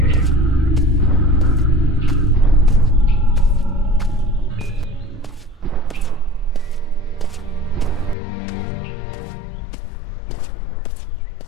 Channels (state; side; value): drops out; right; at 8.2 s